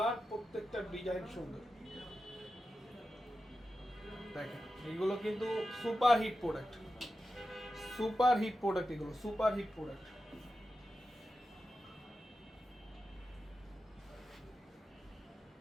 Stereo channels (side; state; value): both; normal; correlation 0.91